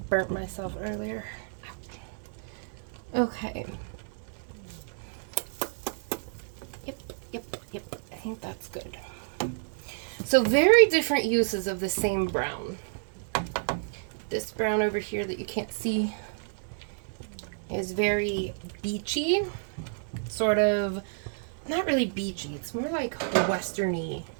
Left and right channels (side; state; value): left; silent; digital silence